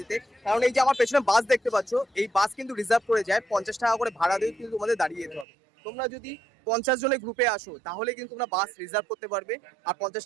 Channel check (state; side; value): drops out; left; at 5.5 s